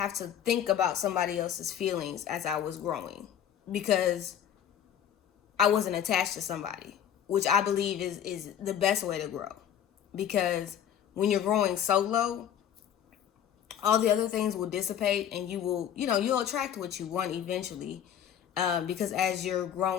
to think about somebody else's feelings as I was growing, because I wasn't attached to somebody, which I believe is the best way to grow. Because when you're growing solo, all the other things will dissipate, and you'll attract what you want eventually. Because as you're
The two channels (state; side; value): quieter; right; 9.6 dB